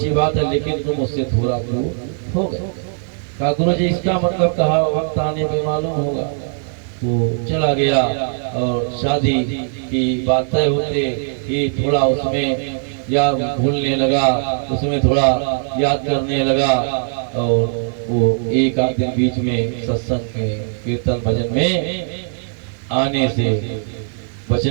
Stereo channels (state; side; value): silent; left; digital silence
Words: बात है, लेकिन तुम उससे थोड़ा दूर हो गए। कहा गुरु जी इसका मतलब कहा वक्त आने पे मालूम होगा। वो चला गया और शादी की बात तय होते ही थोड़ा उसमें याद भूलने लगा, उसमें थोड़ा याद करने लगा, और वो एक आध दिन बीच में सत्संग में कीर्तन भजन में आने से